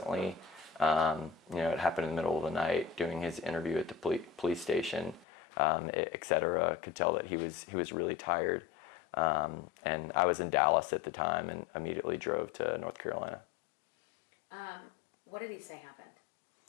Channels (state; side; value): drops out; right; at 5.2 s